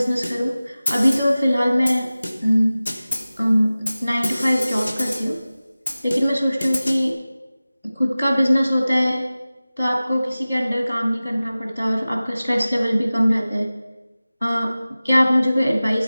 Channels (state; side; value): inverted; both; correlation -0.97